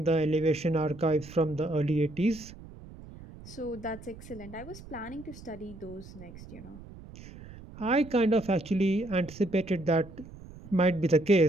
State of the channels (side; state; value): right; noise; rumble, 17 dB below the sound